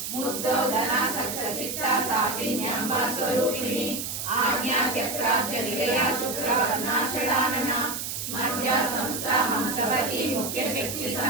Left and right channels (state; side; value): noise; right; hiss, 5 dB below the sound